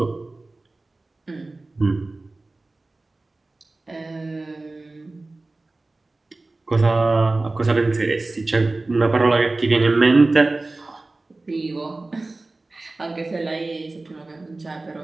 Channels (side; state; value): left; quieter; 3.1 dB